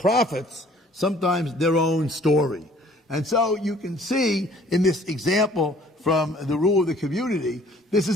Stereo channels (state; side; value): normal; both; correlation 0.56